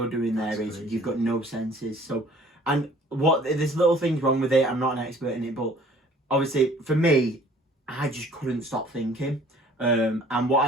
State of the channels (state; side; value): normal; both; correlation 0.53